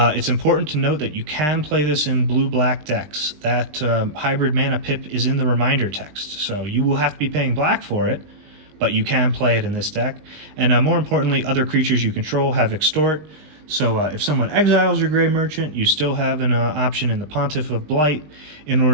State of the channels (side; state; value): left; late; 20 ms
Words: important to note that you can play this in blue-black decks. That hybrid mana pip is in the reminder text, so you will have to be paying black for it, but you can play it in this deck. And more importantly, other creatures you control have extort, so if someone exiles your Grey Merchant, you still have an option in the Pontiff of Blight in